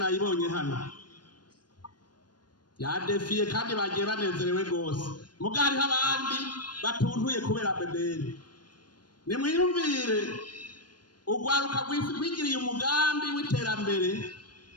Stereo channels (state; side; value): late; right; 0.70 ms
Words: hano yadefiye kandi bagiye banezerewe gose. Mugari abandi batuntuye kubera BBN. Nimwiyumvire ugwaruka gwigiriye umugambi w'iterambere